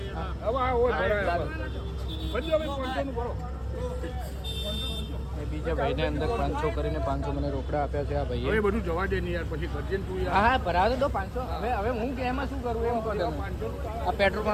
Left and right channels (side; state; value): both; identical; correlation 1.00